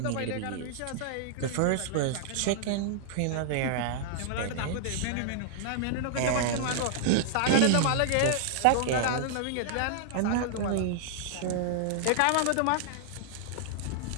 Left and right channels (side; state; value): both; different; correlation -0.01